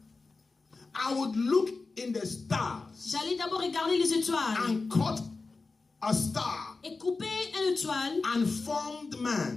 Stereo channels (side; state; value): right; quieter; 3.9 dB